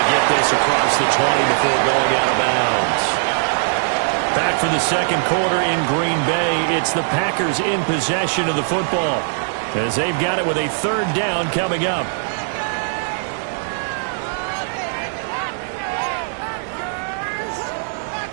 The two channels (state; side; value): silent; left; digital silence